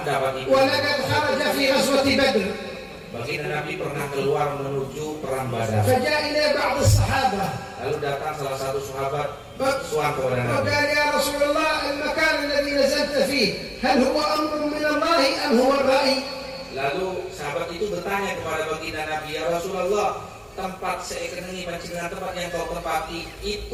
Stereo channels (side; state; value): both; identical; correlation 1.00